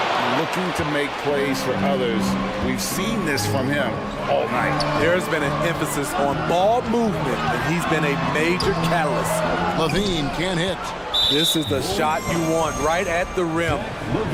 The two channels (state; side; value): identical; both; correlation 1.00